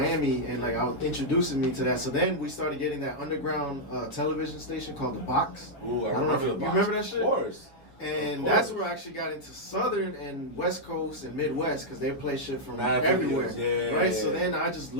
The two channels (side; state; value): right; late; 7.1 ms